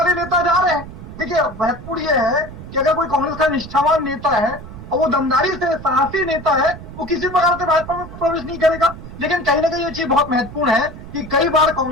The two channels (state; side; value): noise; right; rumble, 13 dB below the sound